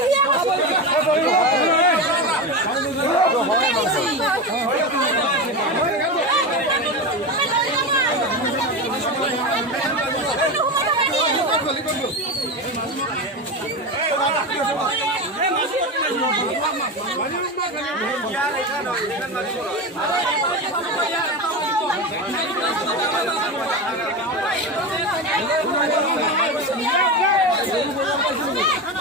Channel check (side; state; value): both; normal; correlation 0.20